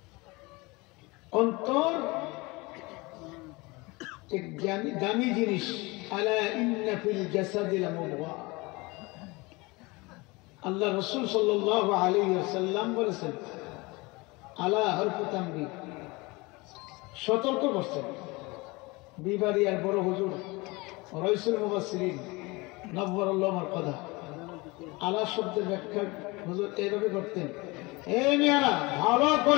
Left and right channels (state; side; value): quieter; right; 24.4 dB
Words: অন্তর এক দামি জিনিস। আলা ইন্না ফিল জাসাদি লামুদগা। আল্লাহ রাসূল সাল্লাল্লাহু আলাইহি ওয়াসাল্লাম বলেছেন, আলা হরফু তানবীহ, সতর্ক করছেন। বিবারিয়ার বড় হুজুর রাইসুল মুফাসসিরিন নব্বরুল্লাহ মারকাদা আলা শব্দের ব্যাখ্যা হুজুর এইভাবে করতেন, এই মেয়েরা ভালো